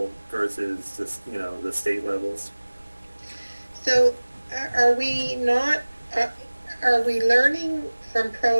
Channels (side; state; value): both; inverted; correlation -1.00